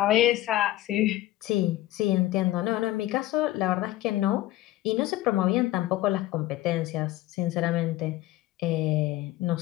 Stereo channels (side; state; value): right; quieter; 15.6 dB